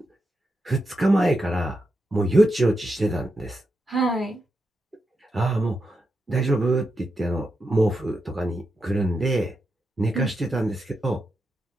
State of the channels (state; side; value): normal; both; correlation 0.86